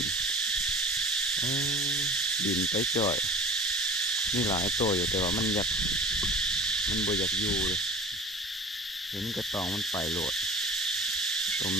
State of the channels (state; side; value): normal; both; correlation 0.40